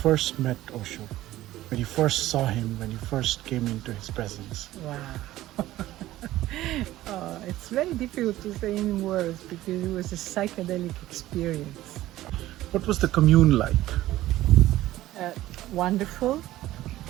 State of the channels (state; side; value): quieter; left; 15.4 dB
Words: met Osho, when you first saw him, when you first came into his presence. Wow. It's very difficult to say in words because it was a psychedelic experience. What was the commune like? Wonderful,